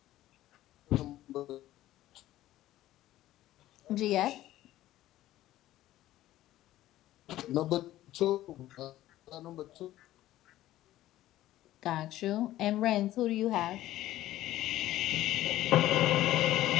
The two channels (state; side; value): quieter; right; 14.6 dB